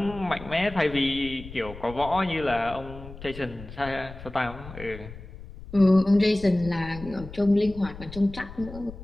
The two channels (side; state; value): left; noise; rumble, 14 dB below the sound